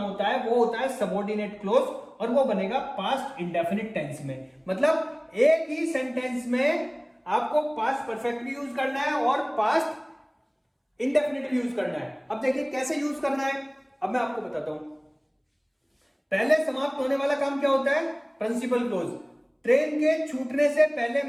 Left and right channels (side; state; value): both; identical; correlation 1.00